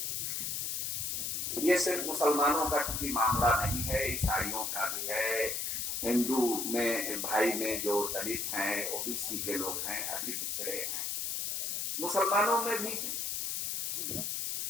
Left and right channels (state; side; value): noise; left; hiss, 1 dB below the sound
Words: ये सिर्फ मुसलमानों का चूंकि मामला नहीं है, ईसाइयों का भी है, हिंदू में भाई में जो दलित हैं, ओबीसी के लोग हैं, अति पिछड़े हैं, मुसलमानों में भी।